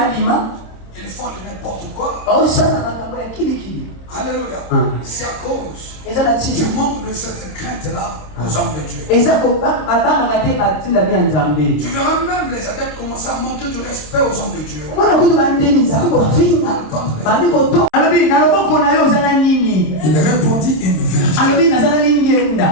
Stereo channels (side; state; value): right; late; 26 ms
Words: ils font n'importe quoi. Alléluia. C'est à cause du manque de cette crainte-là aux hommes de Dieu. Tu verras même les adeptes commencer à manquer du respect aux hommes de Dieu. Il répondit une verge.